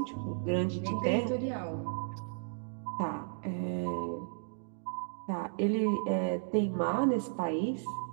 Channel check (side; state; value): left; silent; digital silence